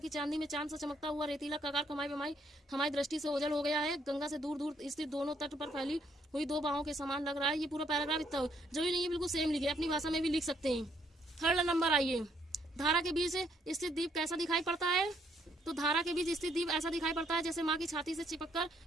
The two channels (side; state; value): both; normal; correlation 0.70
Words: चांदी में चांद सा चमकता हुआ रेतीला कगार कमाई बमाई हमारी दृष्टि से ओझल हो गया है। गंगा से दूर दूर स्थित दोनों तट पर फैली हुई 2 बाहों के समान लग रहा है। ये पूरा पैराग्राफ इतना जरूरी नहीं है बिल्कुल सेम लिखे, अपनी भाषा में भी लिख सकते हैं। थर्ड नंबर आइए, धारा के बीच स्थित द्वीप कैसा दिखाई पड़ता है? तो धारा के बीच स्थित द्वीप ऐसा दिखाई पड़ता है जैसे माँ की छाती से चिपककर